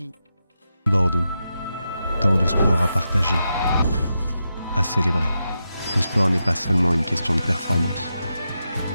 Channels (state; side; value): inverted; both; correlation -0.87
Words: Bordeaux, tant de sport à partager, à célébrer. Le sport n'est pas seulement une question de performance,